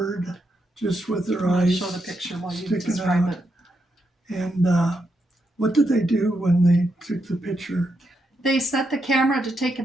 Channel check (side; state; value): both; normal; correlation 0.82